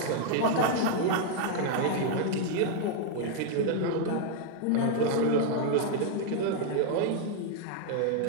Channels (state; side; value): different; both; correlation 0.00